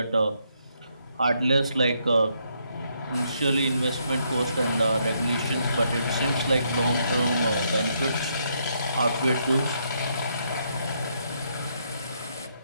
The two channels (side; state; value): both; inverted; correlation -0.75